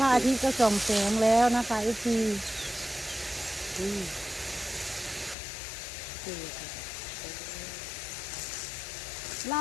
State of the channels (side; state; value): right; drops out; at 5.4 s